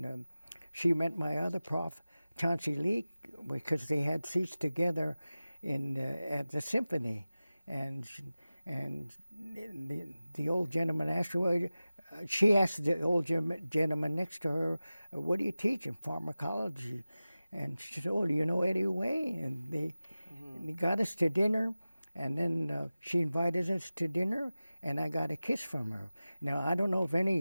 she met my other prof, Chauncey Leak, because they had seats together at the symphony, and the old gentleman asked her, she asked the old gentleman next to her, "What do you teach in pharmacology?" And she said, "Oh, do you know Eddie Way?" And they got us to dinner, and then she invited us to dinner, and I got a kiss from her. Now, I don't know of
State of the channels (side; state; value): both; inverted; correlation -0.96